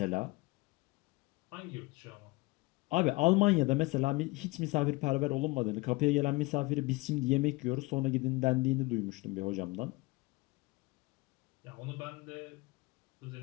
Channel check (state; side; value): quieter; right; 23.2 dB